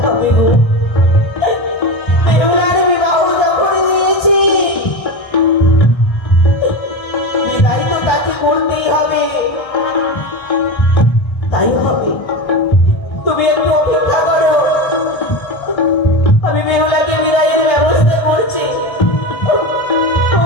হবে গো, করতেই হবে, তাই হবে।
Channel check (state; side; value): late; right; 1.3 ms